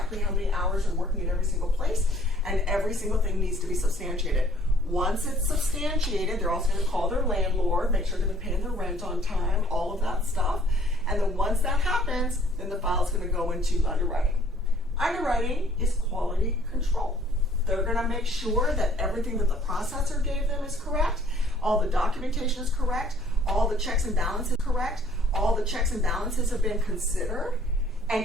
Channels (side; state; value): both; normal; correlation 0.58